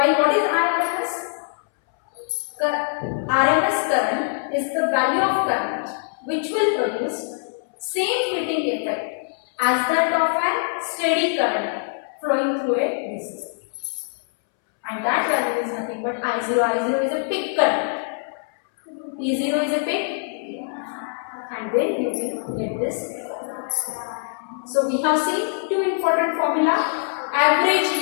what is IRMS? RMS current is the value of current which will produce same heating effect as that of an steady current flowing through a DC circuit. And that value is nothing but I0. I0 is a peak current. E0 is a peak, and then you will get this. So we have seen two important formula. Average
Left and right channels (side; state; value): right; silent; 63 dB below the other